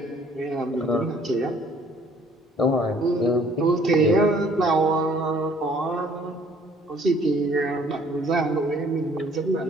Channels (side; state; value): both; normal; correlation 0.58